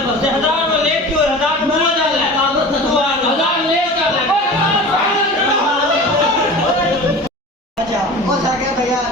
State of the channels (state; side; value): normal; both; correlation 0.35